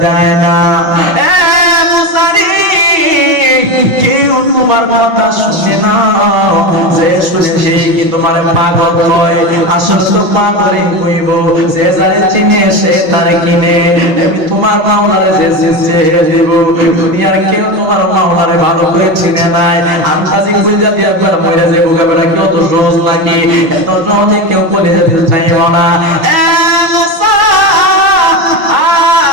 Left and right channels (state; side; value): late; left; 5.7 ms